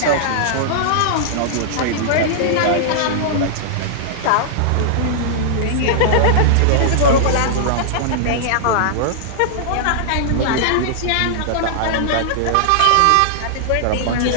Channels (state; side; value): different; both; correlation -0.01